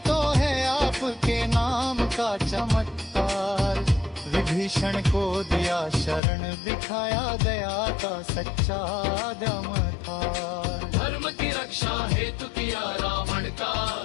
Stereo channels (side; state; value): right; drops out; at 6.2 s